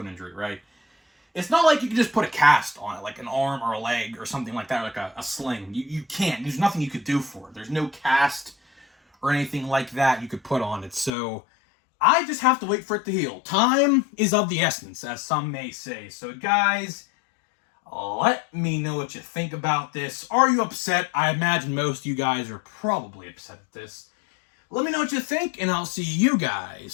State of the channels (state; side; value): drops out; right; at 11.1 s